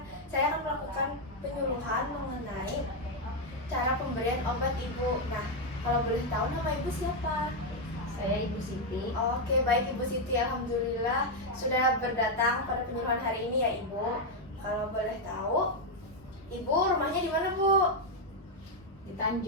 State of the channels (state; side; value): normal; both; correlation 0.02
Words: saya akan melakukan penyuluhan mengenai cara pemberian obat, Ibu. Nah, kalau boleh tahu nama Ibu siapa? Saya Ibu Siti. Oke, baik Ibu Siti. Alhamdulillah sudah berdatang pada penyuluhan hari ini ya, Ibu. Kalau boleh tahu, Ibu rumahnya di mana, Bu? Di